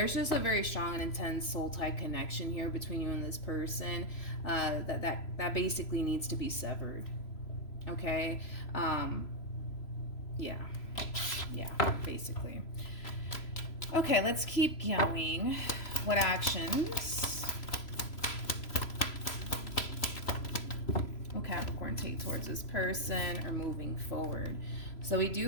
just a very strong and intense soul tie connection here between you and this person, that basically needs to be severed, okay? Yeah, basically. Okay, let's keep going. What actions Capricorn take towards this person or moving forward? So we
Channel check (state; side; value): late; right; 3.0 ms